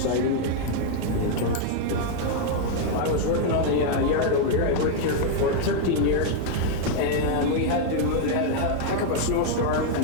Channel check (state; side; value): different; both; correlation 0.00